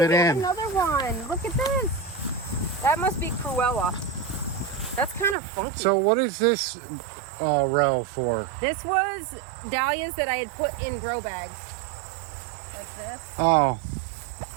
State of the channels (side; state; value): left; drops out; at 5.4 s